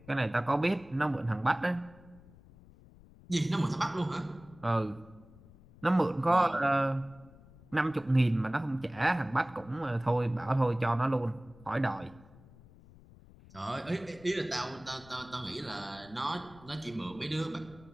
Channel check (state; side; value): noise; left; rumble, 23 dB below the sound